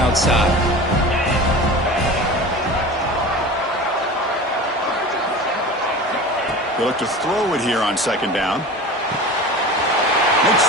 They look to throw it here on second down. Makes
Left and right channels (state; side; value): normal; both; correlation 0.35